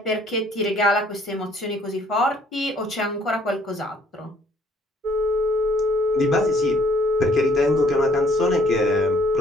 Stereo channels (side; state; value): both; normal; correlation 0.61